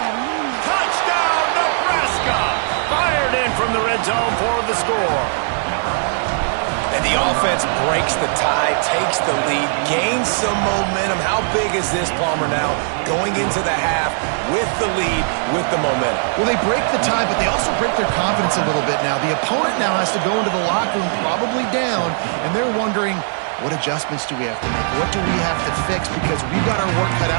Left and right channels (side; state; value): left; silent; digital silence